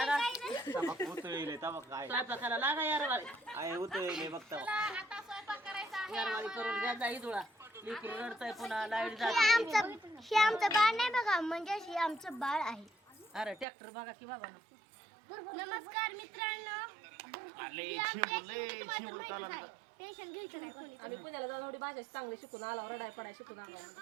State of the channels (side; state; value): left; drops out; at 13.7 s